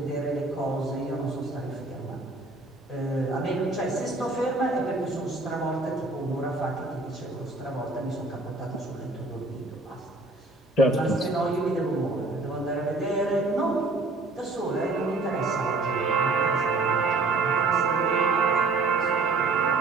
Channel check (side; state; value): left; quieter; 3.4 dB